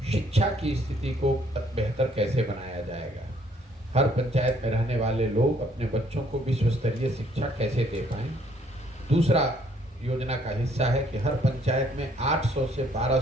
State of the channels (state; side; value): normal; both; correlation 0.64